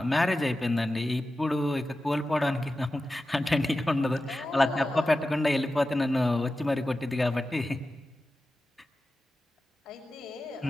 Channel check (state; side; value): normal; both; correlation 0.93